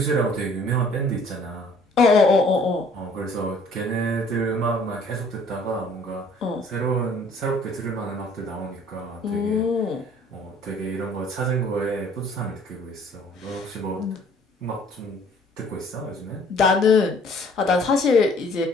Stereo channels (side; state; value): both; normal; correlation 0.57